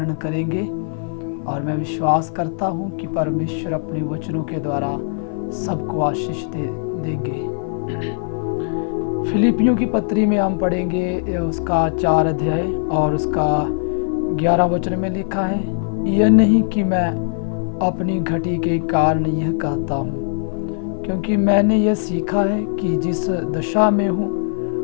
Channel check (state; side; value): silent; right; 56 dB below the other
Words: करेंगे और मैं विश्वास करता हूँ कि परमेश्वर अपने वचनों के द्वारा सबको आशीष देंगे। फिलिपियों की पत्री में हम पढ़ेंगे उसका 4 अध्याय और उसका 11 वचन में लिखा है, यह नहीं कि मैं अपनी घटी के कारण यह कहता हूँ, क्योंकि मैंने यह सीखा है कि जिस दशा में